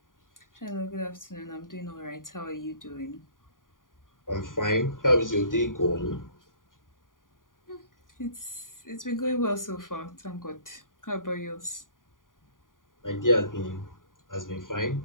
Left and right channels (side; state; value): right; late; 0.89 ms